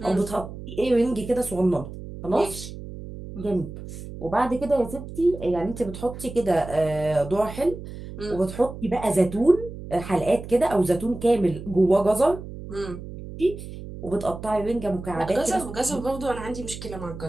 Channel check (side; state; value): right; noise; hum, 11 dB below the sound